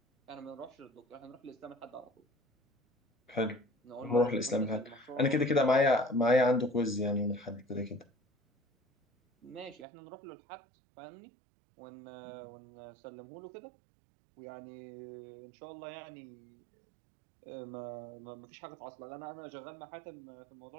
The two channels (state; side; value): drops out; left; at 9.9 s